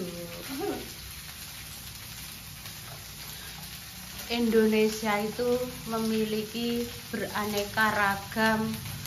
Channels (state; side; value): identical; both; correlation 1.00